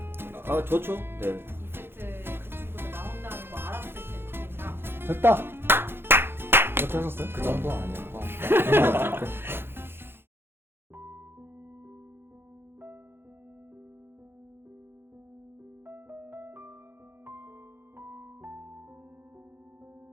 아 좋죠. 네. 2세트에 그 친구들 나온다는 거 알았을 때 느낌이랑 됐다. 이렇게 하셨어요? 그 정도 아니었고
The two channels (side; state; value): left; late; 0.11 ms